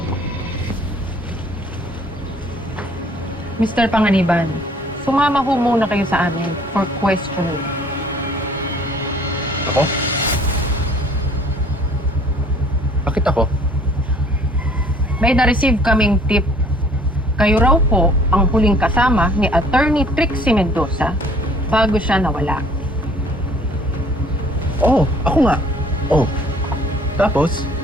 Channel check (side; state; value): both; normal; correlation 0.55